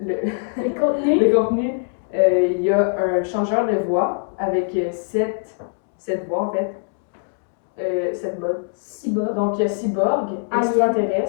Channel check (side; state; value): right; silent; digital silence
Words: contenu. le contenu, il y a un changeur de voix avec 7 voix en fait. 7 modes. Cyborg. Donc, il y a cyborg,